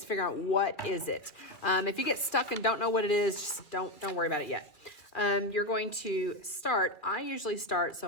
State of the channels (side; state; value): right; late; 2.0 ms